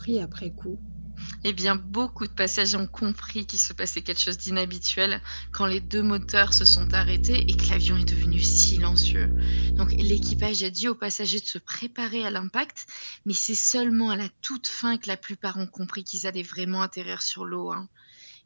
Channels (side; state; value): both; inverted; correlation -1.00